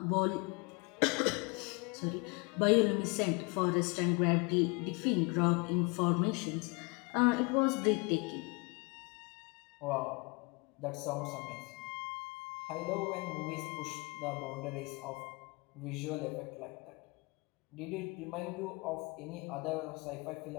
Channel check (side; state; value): right; quieter; 28.9 dB